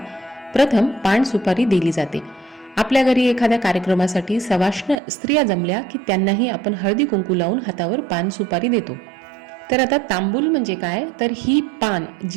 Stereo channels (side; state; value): left; drops out; at 5.0 s